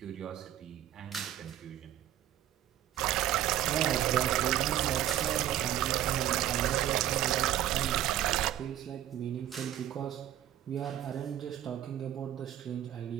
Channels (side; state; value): left; quieter; 12.0 dB